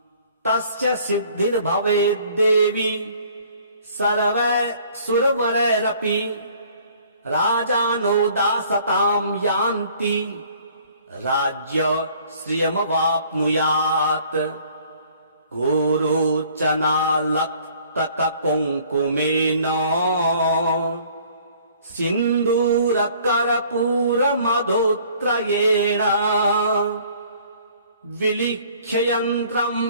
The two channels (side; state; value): both; inverted; correlation -0.56